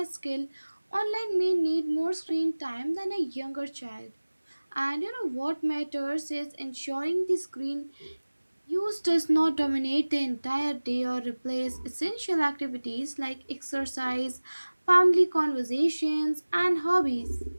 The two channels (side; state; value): both; inverted; correlation -1.00